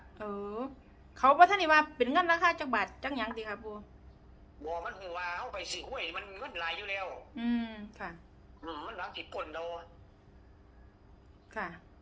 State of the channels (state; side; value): identical; both; correlation 1.00